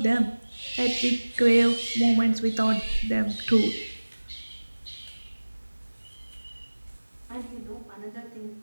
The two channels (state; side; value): inverted; both; correlation -1.00